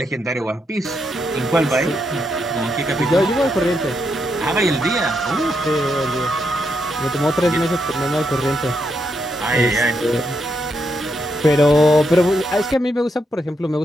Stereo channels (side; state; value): both; normal; correlation 0.80